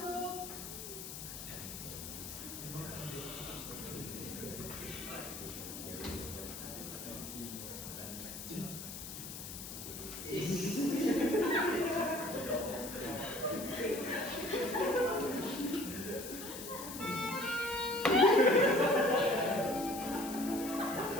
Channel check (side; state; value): left; noise; hiss, 9 dB below the sound